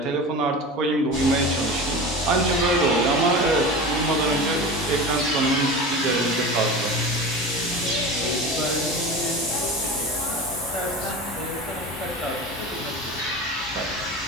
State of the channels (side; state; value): both; normal; correlation 0.31